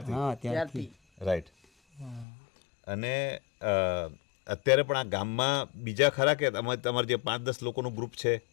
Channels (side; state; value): right; drops out; at 2.2 s